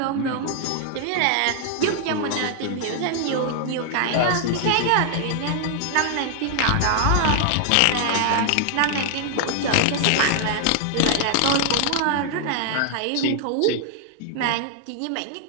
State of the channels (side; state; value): both; different; correlation 0.00